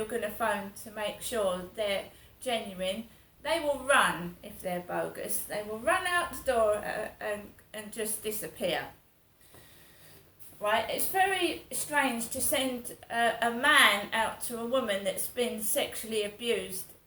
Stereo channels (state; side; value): identical; both; correlation 1.00